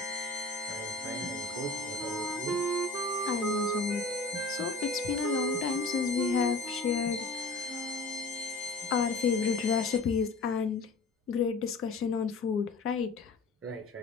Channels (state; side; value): quieter; right; 3.5 dB